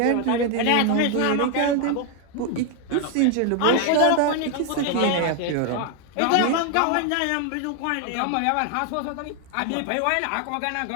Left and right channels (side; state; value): both; different; correlation 0.01